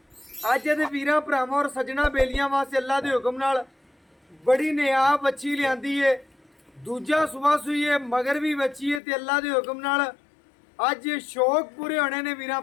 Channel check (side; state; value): right; drops out; at 9.0 s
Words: अज दे वीरां भरावां और सज्जना बेलियां वास्ते अल्लाह दे हुक्म नाल बड़ी नियाब बच्ची लियांदी है। दूजा सुबह सुई है, मगर भी बच्ची है ते अल्लाह दे हुक्म नाल अज शौक पूरे होने ने वीरां